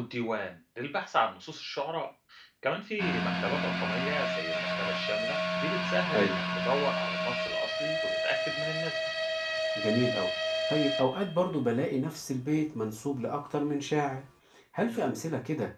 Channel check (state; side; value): identical; both; correlation 1.00